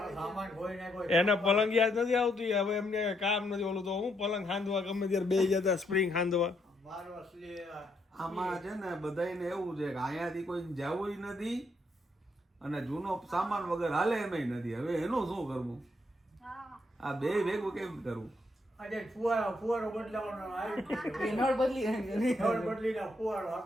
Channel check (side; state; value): both; normal; correlation 0.75